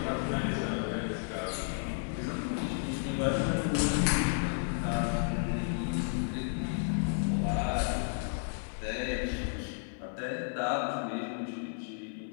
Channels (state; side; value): silent; right; 56 dB below the other